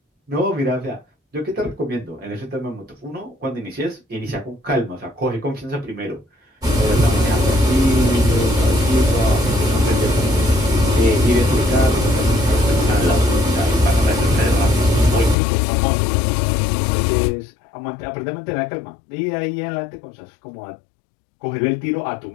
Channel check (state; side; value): drops out; right; at 15.4 s